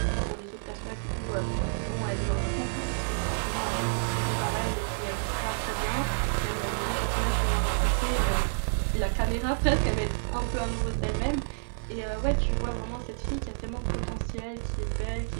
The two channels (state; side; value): silent; left; 58 dB below the other